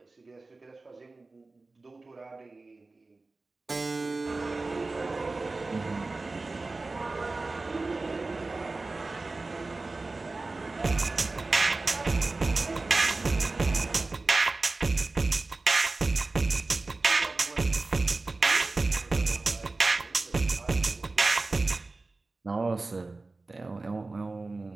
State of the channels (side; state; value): left; quieter; 3.4 dB